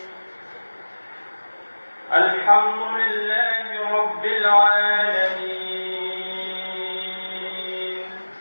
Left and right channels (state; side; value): inverted; both; correlation -1.00